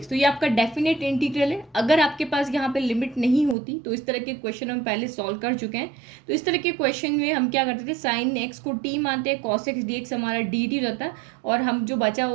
तो ये आपका डेफिनेट इंटीग्रल है। अगर आपके पास यहाँ पे लिमिट नहीं होती तो इस तरह के क्वेश्चन हम पहले सॉल्व कर चुके हैं। तो इस तरह के क्वेश्चन में हम क्या करते थे, साइन एक्स को टी मानते हैं, कॉस एक्स डी एक्स हमारा डी टी रहता है, और हम जो बचा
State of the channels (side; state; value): left; drops out; at 3.6 s